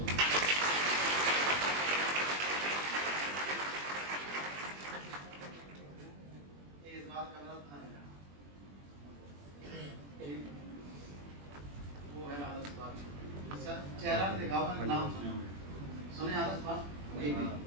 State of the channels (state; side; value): late; left; 21 ms